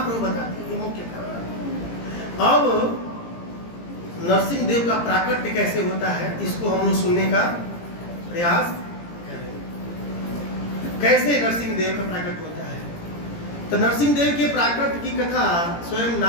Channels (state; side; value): late; right; 17 ms